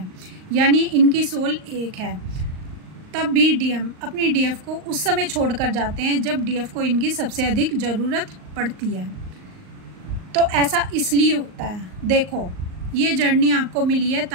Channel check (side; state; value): left; late; 38 ms